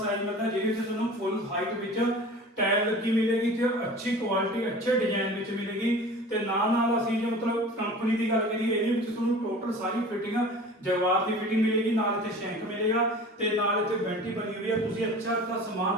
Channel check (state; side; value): normal; both; correlation 0.40